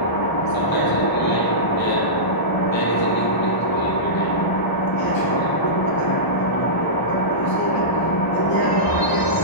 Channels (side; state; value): right; late; 1.0 ms